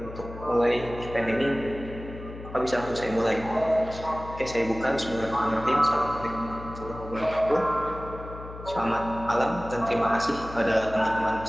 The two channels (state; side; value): noise; left; hum, 13 dB below the sound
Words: untuk mulai event ini, maka bisa langsung saya mulai. Oke, saya buka. Bismillahirrahmanirrahim. Assalamualaikum warahmatullahi wabarakatuh. Selamat malam dan terima kasih kepada teman-teman